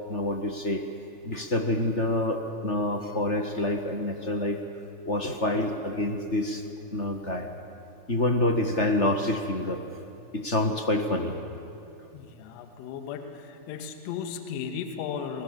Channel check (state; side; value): late; right; 3.4 ms